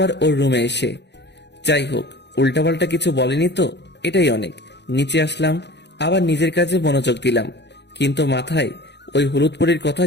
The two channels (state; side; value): late; right; 0.50 ms